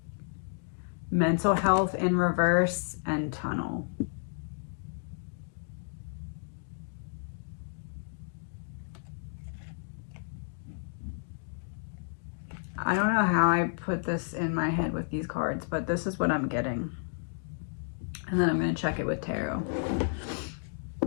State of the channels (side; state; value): right; silent; digital silence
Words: mental health in reverse, and tunnel. I don't know how I put this in my head with these cards, but this is what I'm getting. And then I'm going to check it with tarot.